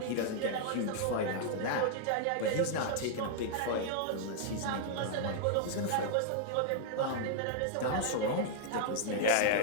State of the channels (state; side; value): different; both; correlation -0.01